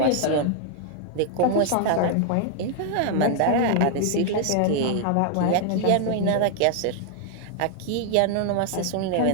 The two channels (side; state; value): both; different; correlation 0.00